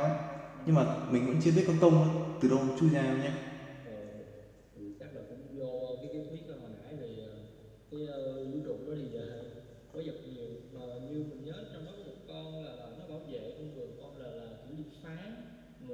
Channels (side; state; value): both; identical; correlation 1.00